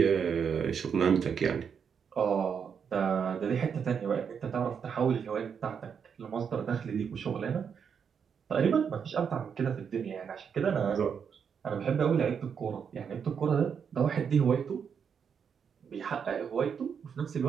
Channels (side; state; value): left; quieter; 7.0 dB